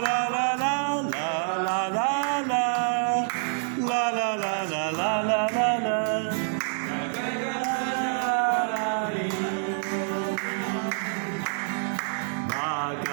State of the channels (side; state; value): left; silent; 59 dB below the other